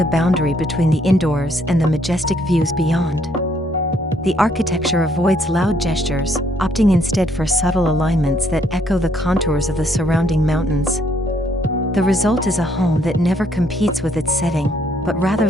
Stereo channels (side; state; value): both; normal; correlation 0.68